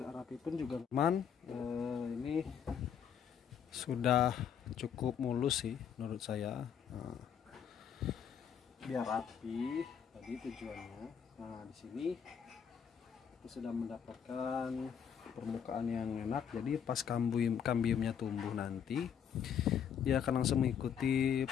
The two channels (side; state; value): right; quieter; 7.9 dB